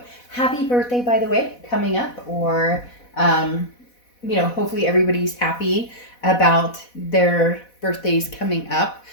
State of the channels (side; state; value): right; late; 4.1 ms